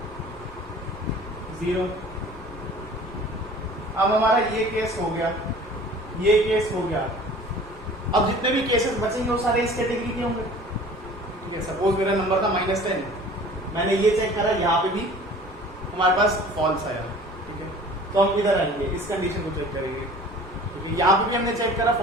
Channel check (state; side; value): normal; both; correlation 0.46